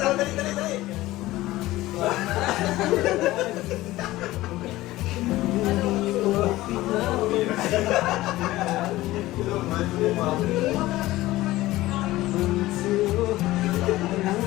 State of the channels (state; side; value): quieter; right; 17.2 dB